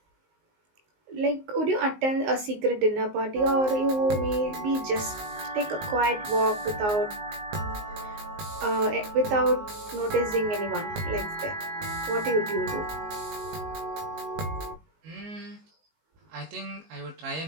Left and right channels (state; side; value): late; left; 19 ms